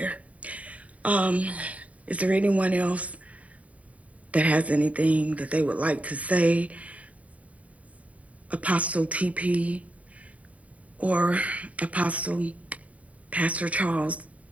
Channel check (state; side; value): late; left; 0.068 ms